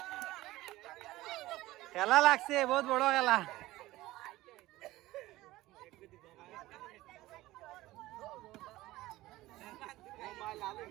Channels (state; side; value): quieter; left; 17.4 dB